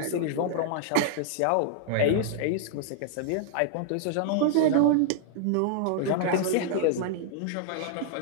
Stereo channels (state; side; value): different; both; correlation -0.01